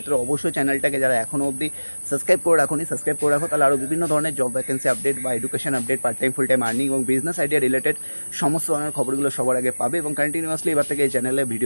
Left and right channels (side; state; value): both; inverted; correlation -1.00